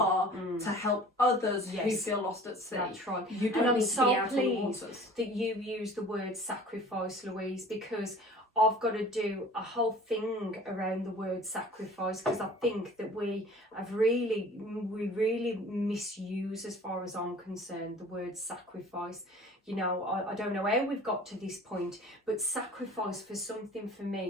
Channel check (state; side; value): normal; both; correlation 0.46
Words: to help others who feel lost at sea. That's right. You don't and I'm need to be out so on the pleased waters. that you use the word sacrifice, Louise, because I've got to do a whole thing around the word sacrifice, because I think that we really misuse, as far as I'm concerned, the word sacrifice. You know, I don't know how we've got to this point, but sacrifice for something for